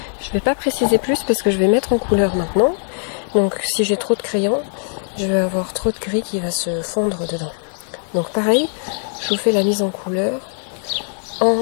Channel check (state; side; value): silent; right; 64 dB below the other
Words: Je vais pas préciser plus parce que je vais mettre en couleur maintenant. Donc si j'ai trop de crayon, je vais avoir trop de gris qui va se fondre dedans. Donc pareil, je vous fais la mise en couleur